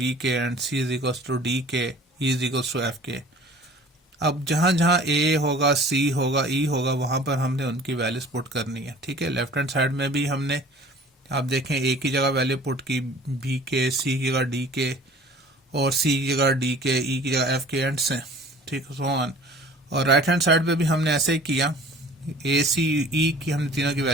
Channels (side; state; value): both; normal; correlation 0.47